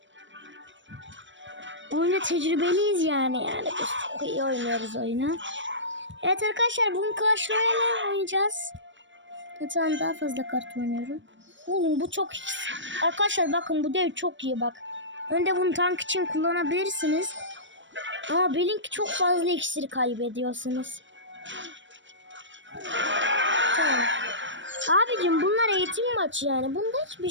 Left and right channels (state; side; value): late; left; 0.54 ms